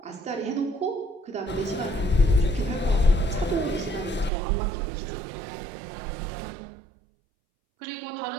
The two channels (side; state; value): left; drops out; at 4.3 s